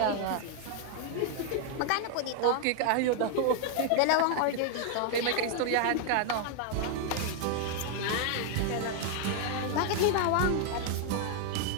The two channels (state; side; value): different; both; correlation 0.00